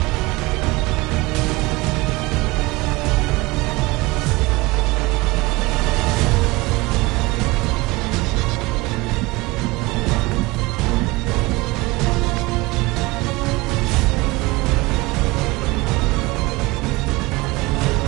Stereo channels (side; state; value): left; quieter; 22.6 dB